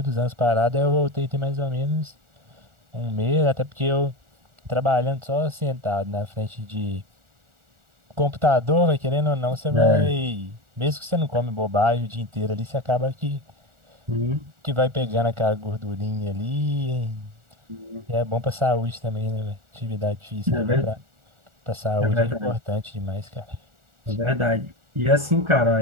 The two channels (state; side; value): late; left; 1.4 ms